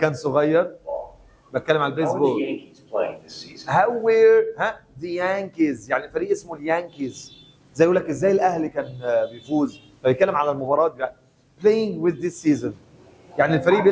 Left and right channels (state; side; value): identical; both; correlation 1.00